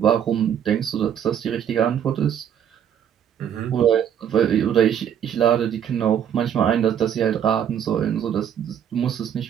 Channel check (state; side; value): quieter; left; 9.2 dB